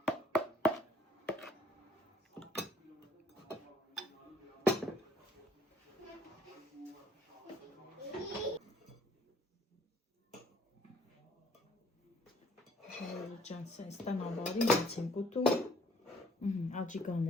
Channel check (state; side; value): normal; both; correlation 0.61